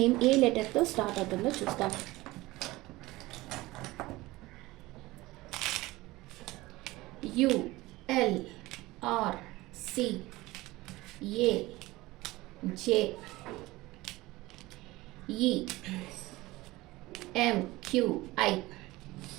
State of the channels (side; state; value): left; quieter; 19.5 dB